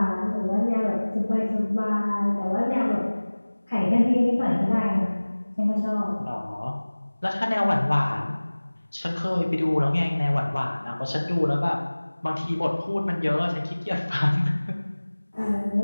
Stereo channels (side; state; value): both; inverted; correlation -1.00